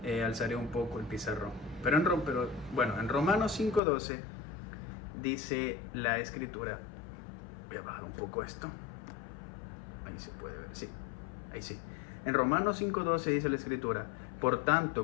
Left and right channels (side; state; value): right; drops out; at 3.8 s